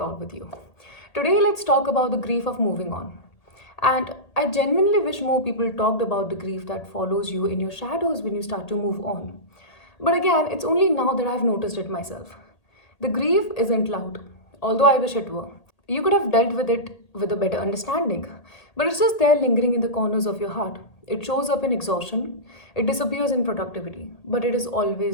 with you. Today, let's talk about the grief of moving on. And I genuinely wish more people talked about the grief that follows you in your shadows when you start to move on. But again, it's only now that I've noticed it myself. The grief isn't loud, although I wish it were. You could have dealt with it with a better understanding, but it's just there lingering in the corners of your heart. It shows up in exhaustion, it disappears in productivity, but it is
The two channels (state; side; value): late; right; 1.8 ms